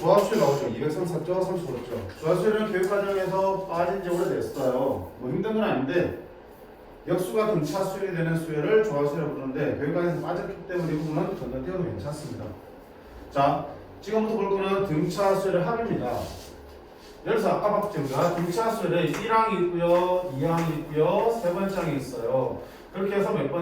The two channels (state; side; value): identical; both; correlation 1.00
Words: 나오죠. 234쪽, 35쪽. 조합수는 교육과정에서 빠진 지 오래됐어요. 뭐 힘든 건 아닌데 역수가 등차수열이 되는 수열을 조합수라고 부르는데 교육과정에서 빠졌기 때문에 이 부분은 건너뛰어도 괜찮습니다. 자, 지금부터 볼 거는 등차수열의 합입니다. 예를 들어서 아까 봤죠. 우리가 등차수열에 1항이 있고요, 2항이 있고요, 세 번째 항이 있어요. 그렇게 해서 몇